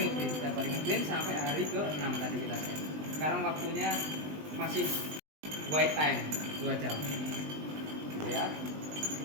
ngeprint sampai hari ke-6 tadi kita set. Sekarang waktunya masih white time 2 jam. Gitu ya.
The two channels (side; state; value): left; late; 20 ms